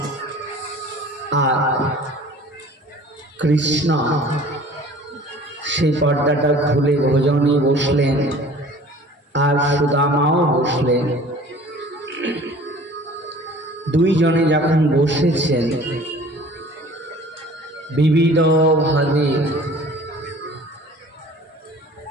আর কৃষ্ণ সেই পর্দাটা খুলে ভোজনে বসলেন, আর সুদামাও বসলেন। দুইজনে যখন বসেছেন বিবিধভাবে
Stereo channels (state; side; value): normal; both; correlation 0.47